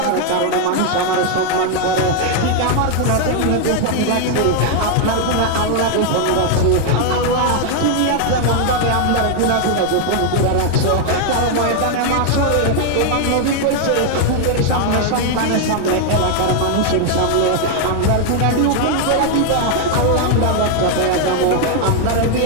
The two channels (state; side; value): different; both; correlation 0.00